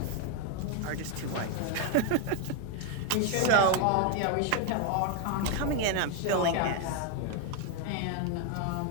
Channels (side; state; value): both; different; correlation 0.01